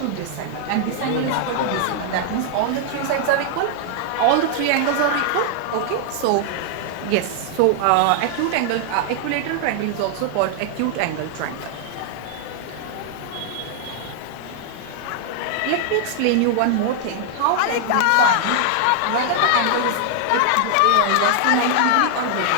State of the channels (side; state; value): both; different; correlation 0.00